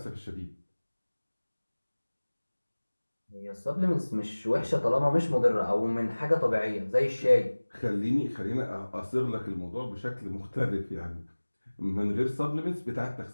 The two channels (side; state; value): both; inverted; correlation -1.00